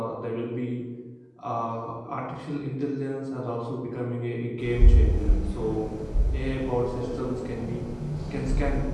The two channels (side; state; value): both; identical; correlation 1.00